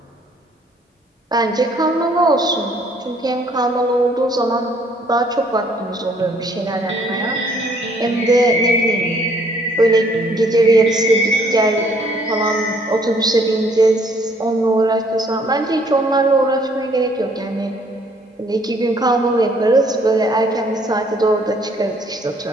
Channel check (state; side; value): normal; both; correlation 0.63